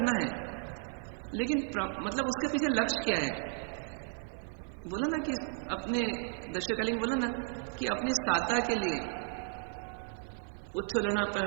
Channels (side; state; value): left; silent; 55 dB below the other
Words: है, लेकिन मतलब उसके पीछे लक्ष्य क्या है? बोला ना कि अपने दशकालिक बोला ना कि अपनी साता के लिए उच्छलना